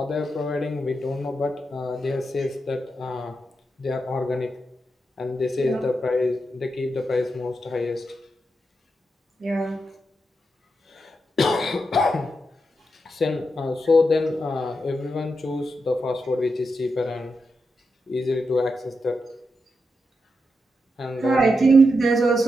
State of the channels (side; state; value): both; normal; correlation 0.86